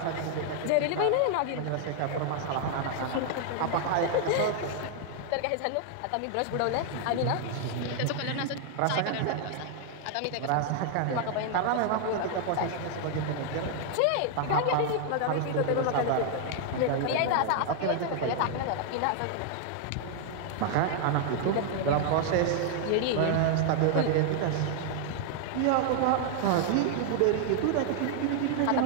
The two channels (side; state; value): both; different; correlation 0.00